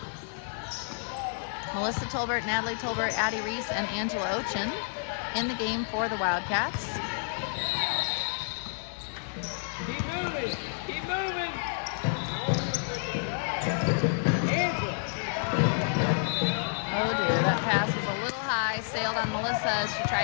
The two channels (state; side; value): silent; right; 58 dB below the other